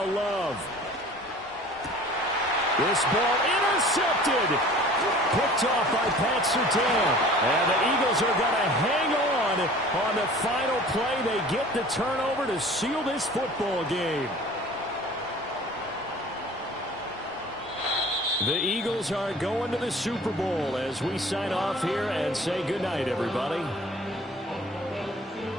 Love. This ball intercepted. Picked off by Pat Surtain. And the Eagles are going to hang on the final play. They get the turnover to seal this football game. The Eagles are going to the Super Bowl as we sign off here and say goodnight, everybody.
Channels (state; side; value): normal; both; correlation 0.46